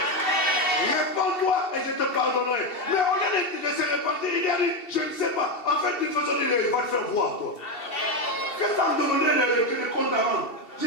Réponds-toi et je te pardonnerai. Mais au lieu de se repentir, il a dit, je ne sais pas. En fait, d'une façon, il va te faire voir, toi. Qu'est-ce que ça me demandait de compte à rendre? Je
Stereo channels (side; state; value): right; late; 2.7 ms